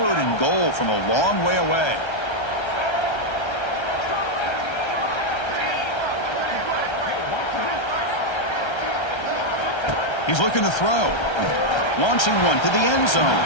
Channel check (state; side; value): late; right; 1.3 ms